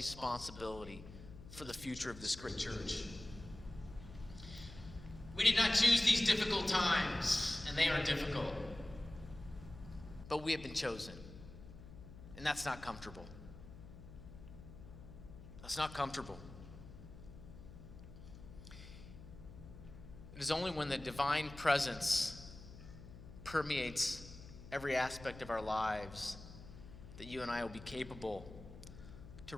for the future of this great church. We did not choose these difficult times, and they are difficult. But we have been chosen. And that's not comfortable. That's not comfortable. It is only when the divine presence permeates every aspect of our lives that you and I will be capable to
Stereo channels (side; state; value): left; noise; hum, 15 dB below the sound